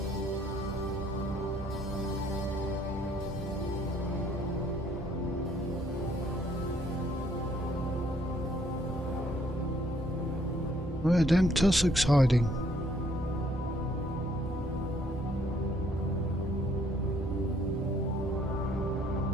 Where are them tussocks hiding?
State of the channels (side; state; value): both; normal; correlation 0.65